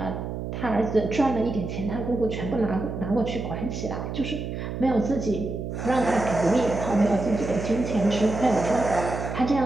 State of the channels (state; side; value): noise; right; hum, 6 dB below the sound